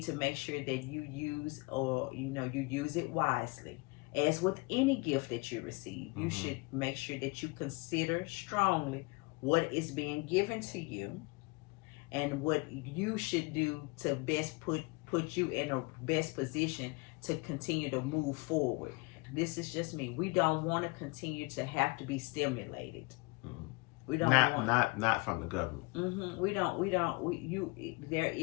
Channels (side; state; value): right; quieter; 28.1 dB